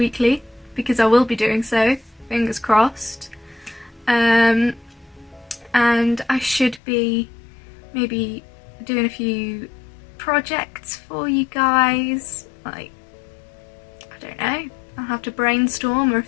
because I will be doing so, fingers crossed. And I should be maybe doing a few projects for you guys, like, I don't know, I'll have to brainstorm, or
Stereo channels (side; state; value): right; drops out; at 6.8 s